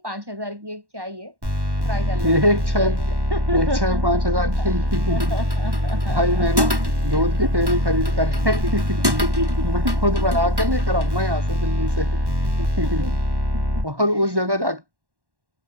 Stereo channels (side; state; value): left; late; 1.1 ms